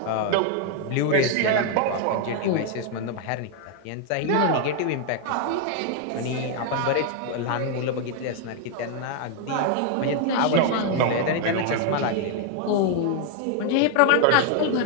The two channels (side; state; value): both; different; correlation 0.00